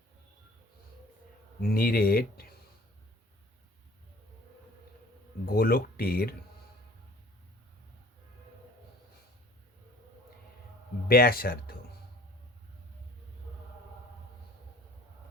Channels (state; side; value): normal; both; correlation 0.50